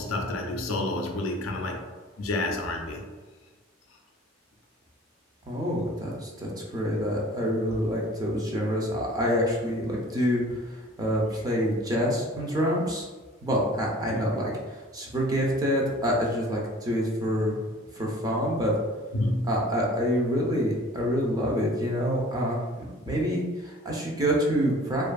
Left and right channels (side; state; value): both; normal; correlation 0.48